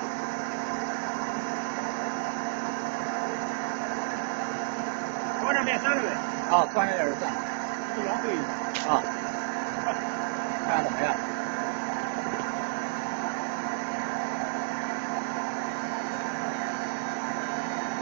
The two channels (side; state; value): left; silent; 58 dB below the other